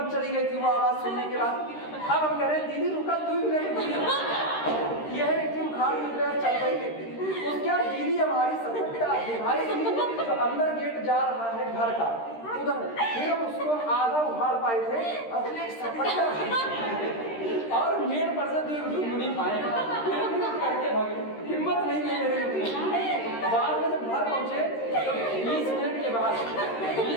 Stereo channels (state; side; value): late; right; 13 ms